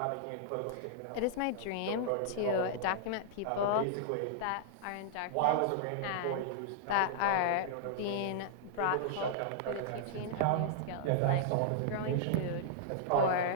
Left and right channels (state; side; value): different; both; correlation -0.01